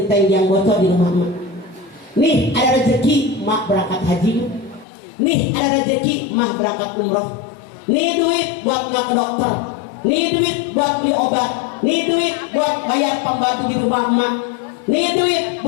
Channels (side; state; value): right; drops out; at 4.9 s